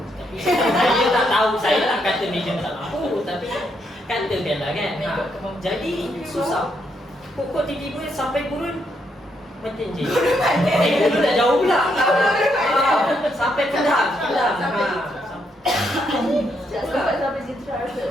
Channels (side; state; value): both; normal; correlation 0.77